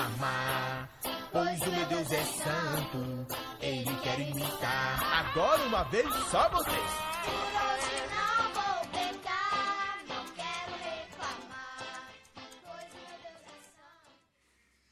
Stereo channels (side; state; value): both; identical; correlation 1.00